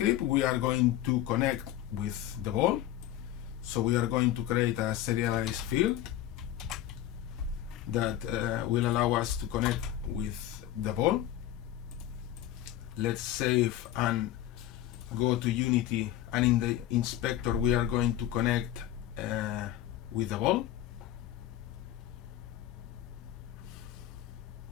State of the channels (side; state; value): right; quieter; 12.9 dB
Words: we are going to connect with the ball. So we are going to create a serialized field that will allow us to connect with the ball. Let's save and go to Unity, and in the inspector we are going to connect with the ball.